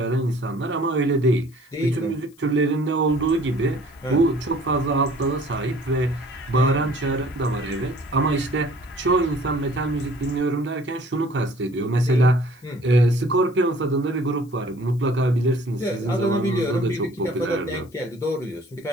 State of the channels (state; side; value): noise; left; hiss, 30 dB below the sound